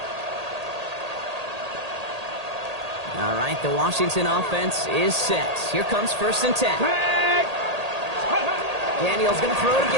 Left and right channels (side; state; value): left; late; 1.8 ms